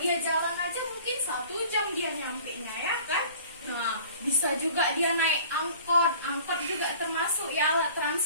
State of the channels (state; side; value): inverted; both; correlation -0.47